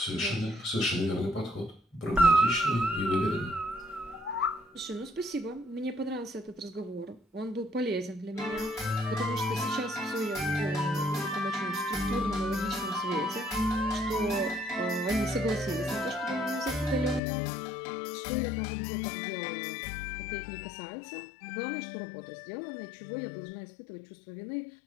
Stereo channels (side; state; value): right; drops out; at 17.2 s